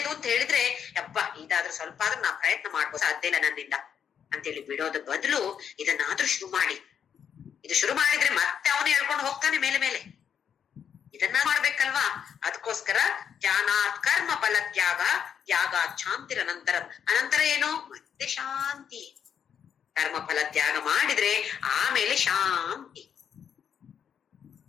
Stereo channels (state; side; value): quieter; right; 8.0 dB